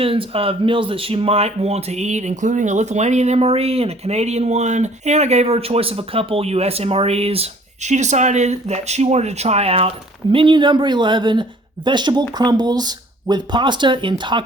of meals that she might want to eat, including a Lithuanian MRE and a Canadian one, and I gave her a choice of a couple US MREs. She decided that she wanted to try out menu number 11, vegetable crumbles with pasta in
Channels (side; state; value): both; normal; correlation 0.55